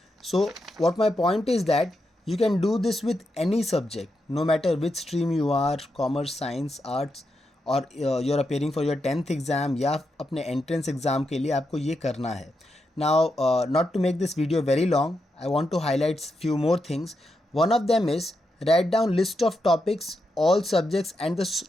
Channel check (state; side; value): normal; both; correlation 0.85